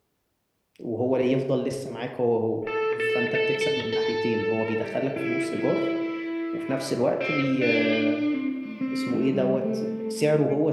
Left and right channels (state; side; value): identical; both; correlation 1.00